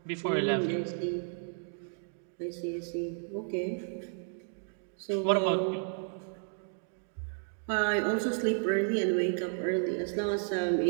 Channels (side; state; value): left; silent; 56 dB below the other